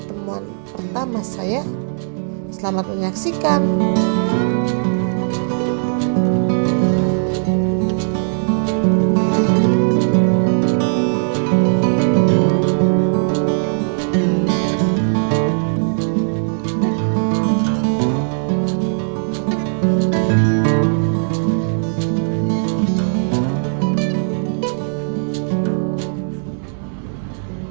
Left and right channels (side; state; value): left; silent; digital silence